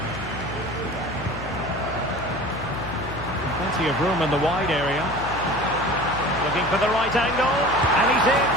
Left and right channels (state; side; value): noise; left; hum, 11 dB below the sound